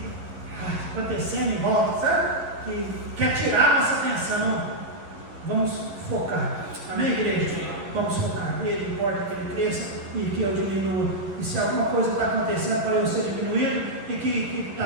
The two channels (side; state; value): left; late; 11 ms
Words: acontecendo em volta, sabe? Que quer tirar a nossa atenção. Vamos focar, amém, igreja? Vamos focar. Ele importa que ele cresça e que eu diminua. E se alguma coisa está acontecendo para eu ser diminuído e que